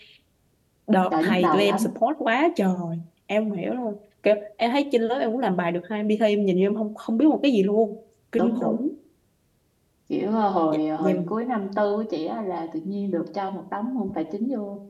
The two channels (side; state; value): both; identical; correlation 1.00